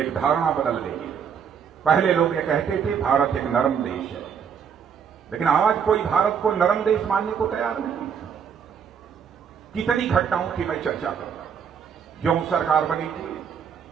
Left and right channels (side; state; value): left; quieter; 7.3 dB